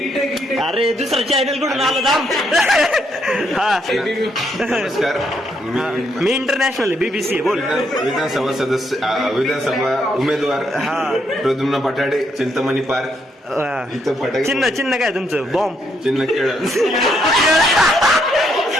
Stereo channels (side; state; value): both; normal; correlation 0.75